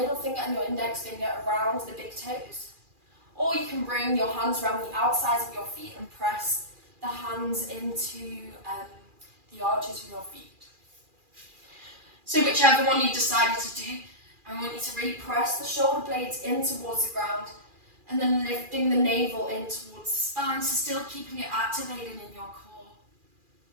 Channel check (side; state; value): left; late; 2.4 ms